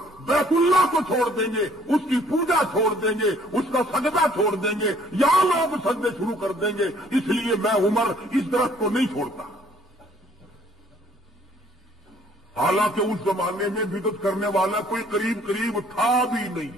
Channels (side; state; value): both; normal; correlation 0.59